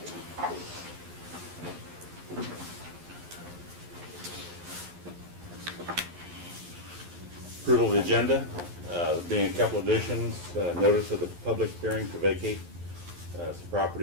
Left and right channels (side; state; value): left; late; 11 ms